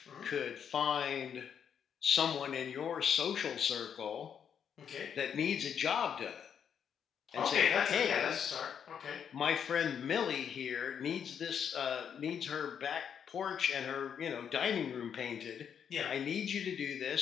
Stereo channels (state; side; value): quieter; right; 7.9 dB